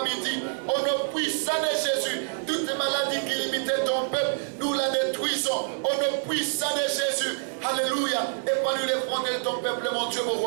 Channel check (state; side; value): silent; left; digital silence